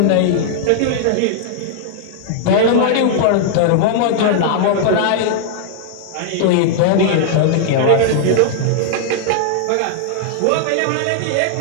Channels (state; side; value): different; both; correlation -0.01